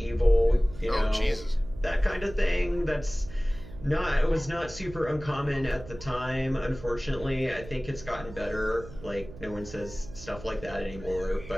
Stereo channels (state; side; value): noise; right; hum, 15 dB below the sound